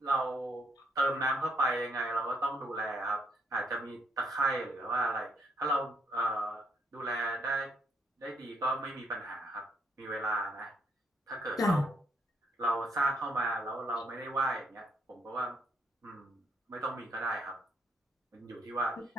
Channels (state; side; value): normal; both; correlation 0.72